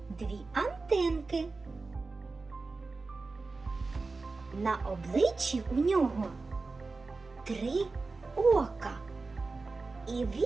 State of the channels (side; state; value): left; quieter; 3.8 dB